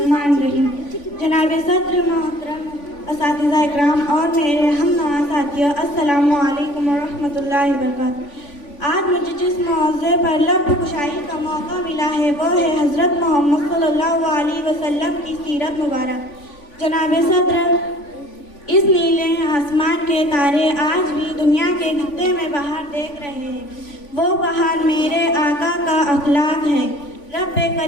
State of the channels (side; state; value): right; late; 3.5 ms